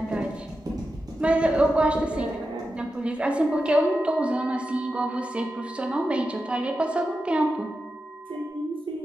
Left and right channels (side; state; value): both; normal; correlation 0.90